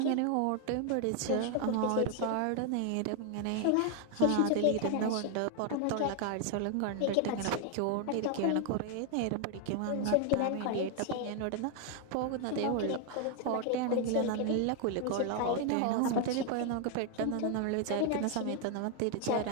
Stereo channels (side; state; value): both; different; correlation 0.01